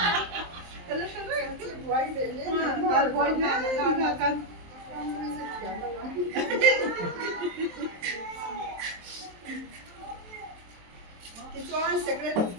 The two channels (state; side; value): late; left; 23 ms